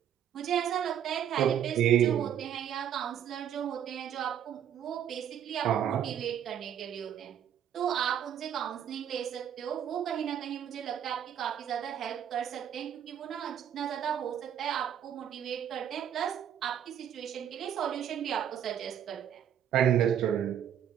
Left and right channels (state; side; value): quieter; left; 9.5 dB